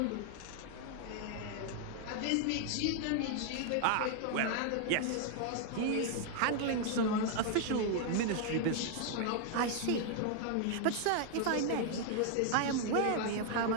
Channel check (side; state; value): both; different; correlation 0.00